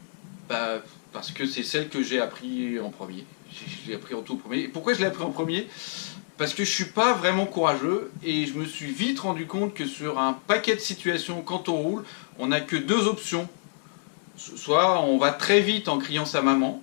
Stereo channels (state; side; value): silent; right; 60 dB below the other